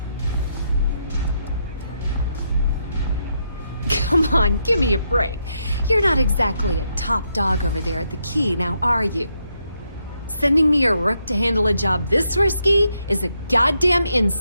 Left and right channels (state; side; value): inverted; both; correlation -0.79